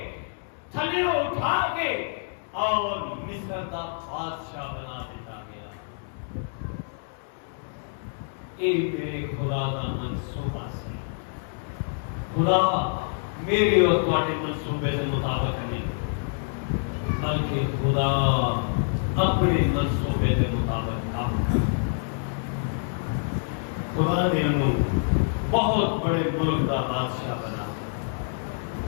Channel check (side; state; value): right; silent; digital silence